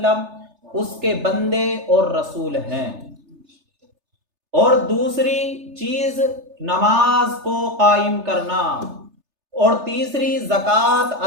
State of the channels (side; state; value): left; late; 3.3 ms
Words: اس کے بندے اور رسول ہیں۔ اور دوسری چیز نماز کو قائم کرنا، اور تیسری زکوٰۃ